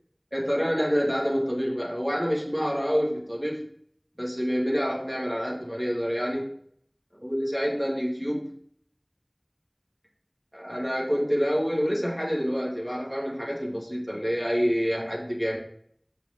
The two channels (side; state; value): both; identical; correlation 1.00